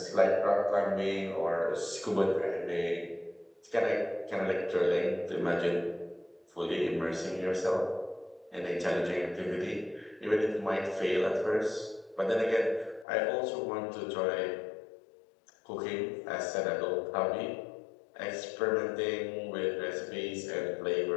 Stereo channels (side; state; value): right; drops out; at 13.1 s